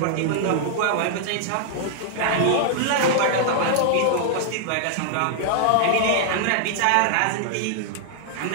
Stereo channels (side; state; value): both; different; correlation -0.01